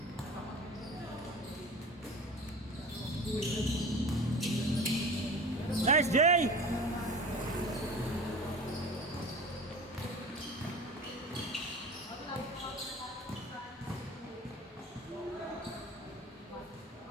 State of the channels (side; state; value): both; normal; correlation 0.37